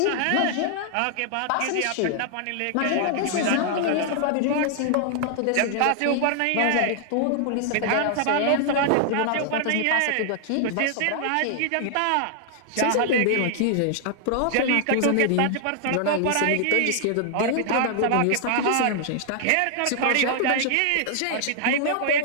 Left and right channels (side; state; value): both; different; correlation 0.00